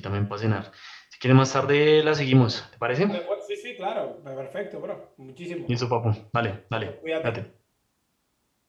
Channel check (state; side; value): identical; both; correlation 1.00